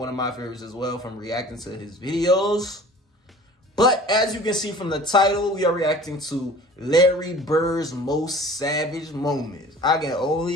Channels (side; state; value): both; normal; correlation 0.45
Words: of my favorites as well from reacting to his videos. But as you can see from the title, we are reacting to Larry Bird's most savage moments. I can